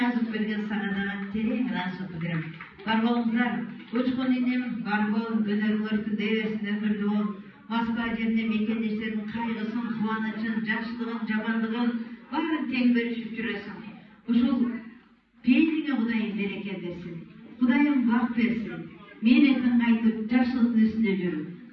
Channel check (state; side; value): identical; both; correlation 1.00